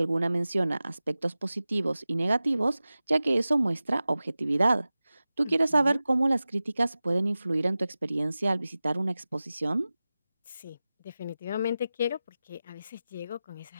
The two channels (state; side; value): inverted; both; correlation -0.96